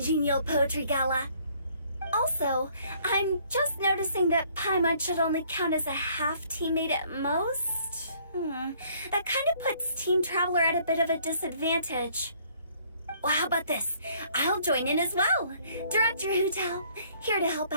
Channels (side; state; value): both; inverted; correlation -0.61